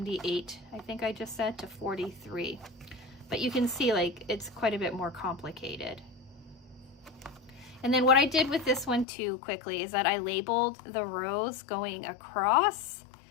I think I just said, to 43. But you can see like it's quite a bit more complicated. And then what I did with this one too quickly is that I labeled the rows going across,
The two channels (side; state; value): right; drops out; at 9.1 s